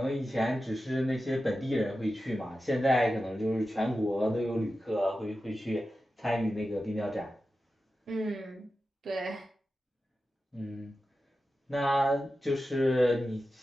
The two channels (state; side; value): normal; both; correlation 0.92